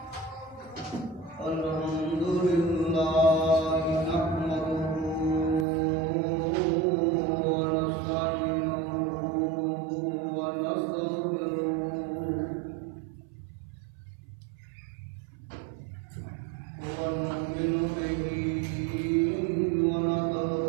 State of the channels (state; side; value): drops out; left; at 5.7 s